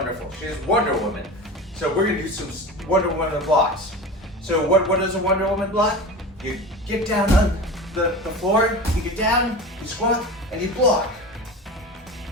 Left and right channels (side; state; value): both; normal; correlation 0.31